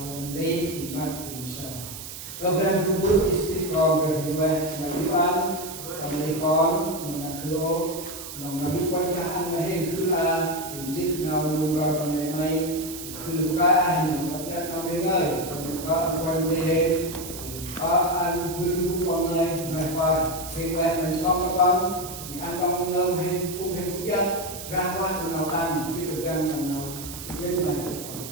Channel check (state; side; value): noise; right; hiss, 10 dB below the sound